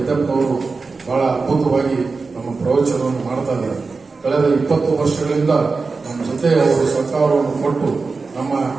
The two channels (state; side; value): quieter; left; 4.3 dB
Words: ಬಹಳ ಅದ್ಭುತವಾಗಿ ನಮ್ಮ ಪ್ರವಚನವನ್ನು ಮಾಡ್ತಾ ಇದ್ದಾರೆ. ಕಳೆದ 20 ವರ್ಷಗಳಿಂದ ನಮ್ಮ ಜೊತೆ ಅವರು ಸಹಕಾರವನ್ನು ಕೊಟ್ಟು ನಮ್ಮ